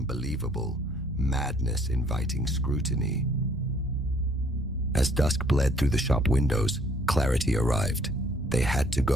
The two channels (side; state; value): both; normal; correlation 0.61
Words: madness inviting scrutiny. As dusk bled through the shop windows, clarity arrived. They had to